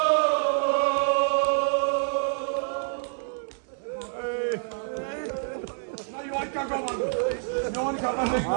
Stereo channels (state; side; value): silent; left; digital silence